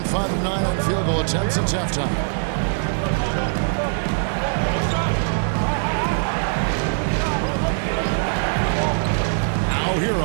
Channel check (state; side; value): silent; left; digital silence